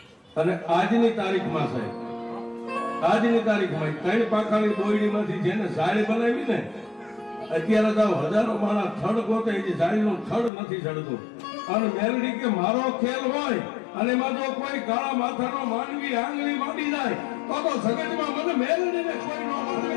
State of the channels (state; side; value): drops out; right; at 10.5 s